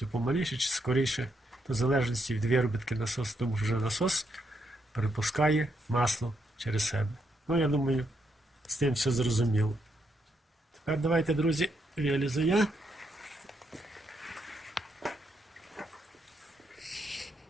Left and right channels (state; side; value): normal; both; correlation 0.78